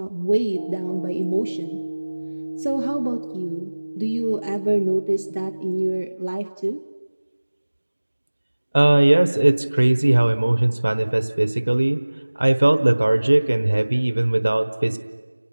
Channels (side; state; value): both; inverted; correlation -1.00